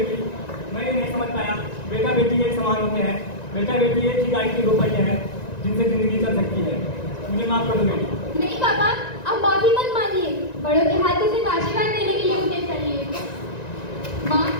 मैं ये नहीं समझ पाया बेटा बेटी एक समान होते हैं। बेटा बेटी एक ही गाड़ी के दो पहिए हैं जिनसे जिंदगी चल सकती है। मुझे माफ कर दो बेटी। नहीं पापा, अब माफी मत मांगिए। बड़ों के हाथों से आशीर्वाद देने के लिए मुझे चलिए। माँ,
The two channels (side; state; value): right; late; 1.9 ms